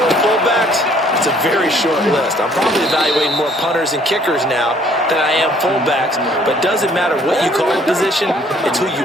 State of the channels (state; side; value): normal; both; correlation 0.60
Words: fullbacks, it's a very short list. I'm probably evaluating more punters and kickers now than I am fullbacks, but doesn't matter what you call a position, it's who you